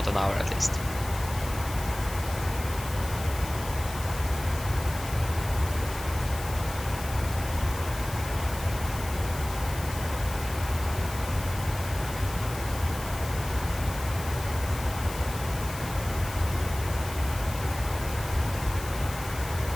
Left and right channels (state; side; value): noise; left; hiss, 12 dB below the sound